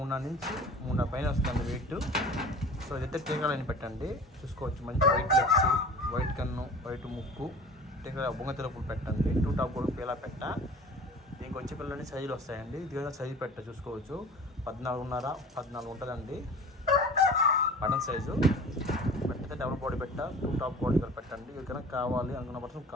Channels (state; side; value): normal; both; correlation 0.41